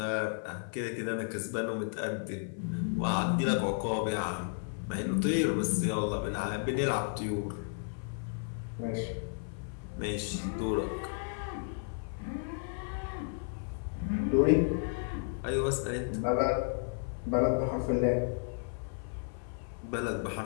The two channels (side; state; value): right; silent; 56 dB below the other